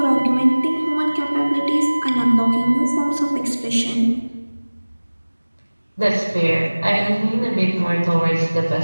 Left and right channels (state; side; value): inverted; both; correlation -1.00